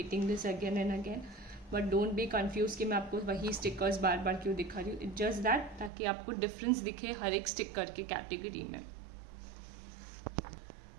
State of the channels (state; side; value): drops out; left; at 5.9 s